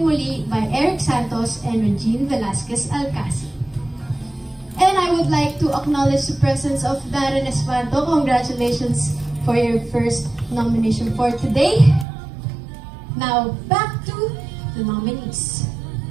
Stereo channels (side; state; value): left; drops out; at 12.1 s